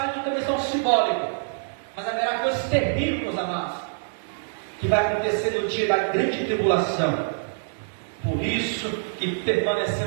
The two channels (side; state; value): left; silent; digital silence